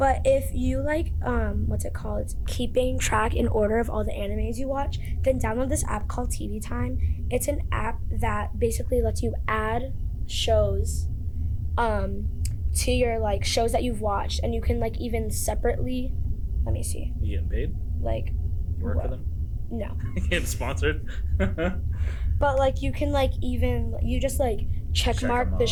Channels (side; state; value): both; identical; correlation 1.00